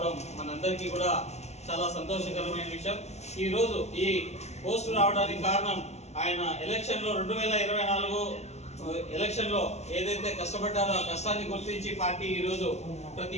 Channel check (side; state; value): right; late; 0.32 ms